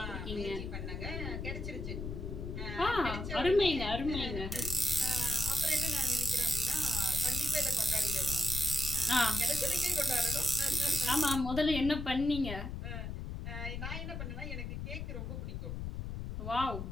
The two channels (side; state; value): left; noise; rumble, 5 dB below the sound